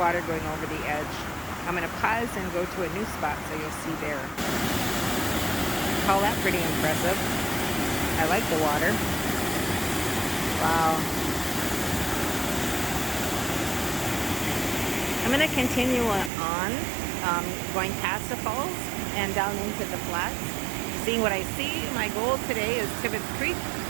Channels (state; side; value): drops out; left; at 16.3 s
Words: going over the edge. I'm going to pause and go to a new spot so you'll see there. Call that pretty impressive. I like the water. Wow. I'm going to continue on, going past the falls and down into the flats, seeing what I see. My goal today is Tibbetts Creek.